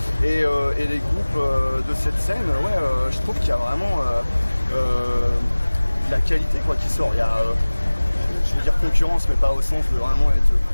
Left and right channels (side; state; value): both; inverted; correlation -1.00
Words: Et les groupes de cette scène, je trouve qu'il y a vraiment de la qualité quoi, qui sort. Il y a, je veux dire concurrence, mais pas au sens de vraiment être